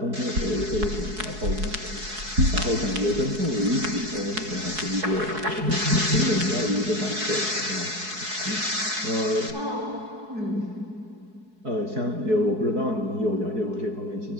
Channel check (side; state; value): left; late; 4.7 ms